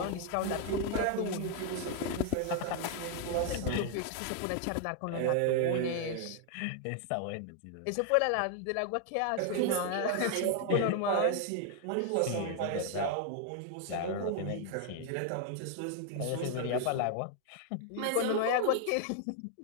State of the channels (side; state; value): both; different; correlation 0.00